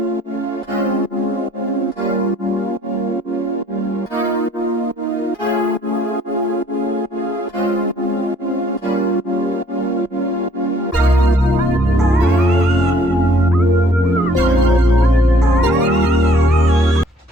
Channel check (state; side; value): normal; both; correlation 0.59